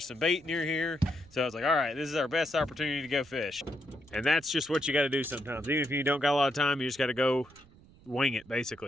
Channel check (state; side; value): noise; right; rumble, 25 dB below the sound